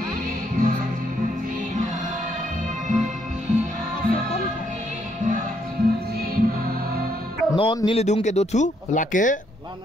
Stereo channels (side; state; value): both; normal; correlation 0.73